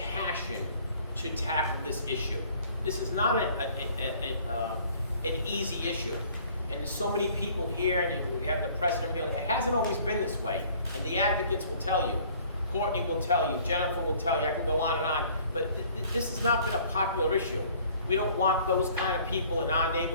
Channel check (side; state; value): both; inverted; correlation -0.55